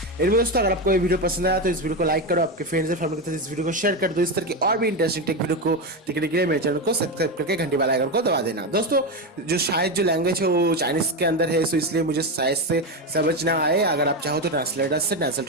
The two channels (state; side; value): normal; both; correlation 0.13